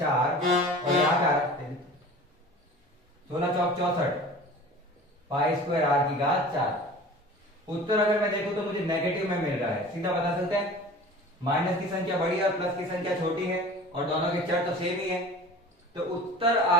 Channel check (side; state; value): both; normal; correlation 0.40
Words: और यहां पे आ रहा है 16 चौक 64 पाई स्क्वायर आर की घात 4। उत्तर अगर मैं देखूं तो मुझे नेगेटिव में मिल रहा है। सीधा बता सकते हैं, माइनस की संख्या बड़ी है और प्लस की संख्या छोटी है, और दोनों के चर तो सेम ही है। तो उत्तर आ